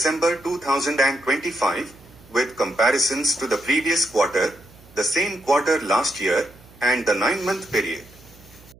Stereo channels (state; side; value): noise; right; hum, 24 dB below the sound